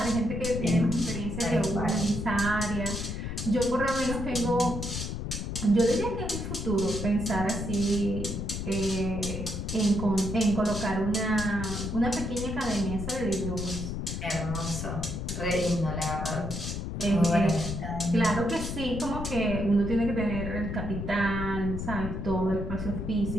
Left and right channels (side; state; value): left; noise; rumble, 5 dB below the sound